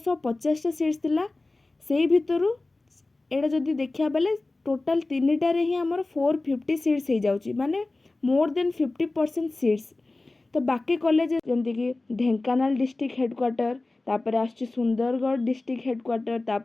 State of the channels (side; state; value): right; quieter; 3.1 dB